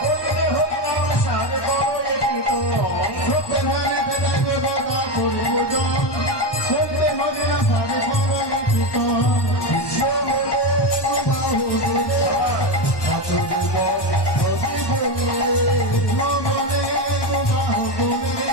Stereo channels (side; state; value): right; late; 1.1 ms